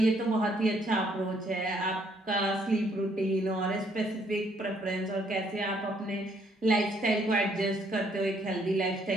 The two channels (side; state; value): both; normal; correlation 0.68